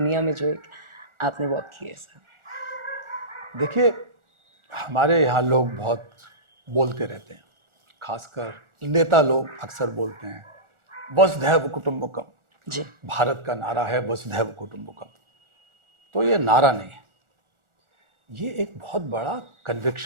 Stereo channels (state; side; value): late; left; 1.4 ms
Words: में जो एक आपने वॉक की है सर। देखिए, हमारे यहाँ लोग बहुत बोलते रहते हैं, खासकर नेता लोग अक्सर बोलते हैं वसुधैव कुटुंबकम। जी। भारत का नारा है वसुधैव कुटुंबकम। तो ये नारा नहीं है, ये एक बहुत बड़ा